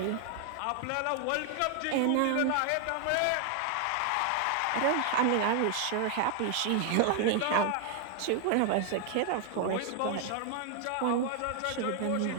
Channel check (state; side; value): different; both; correlation 0.00